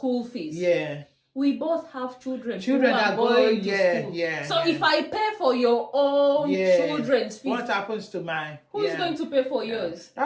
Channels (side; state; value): both; identical; correlation 1.00